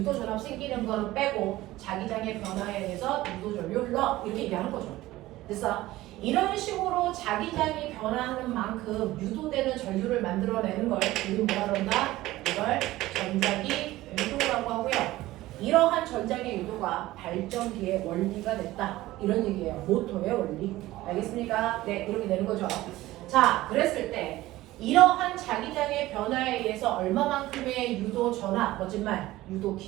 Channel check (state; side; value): quieter; left; 16.9 dB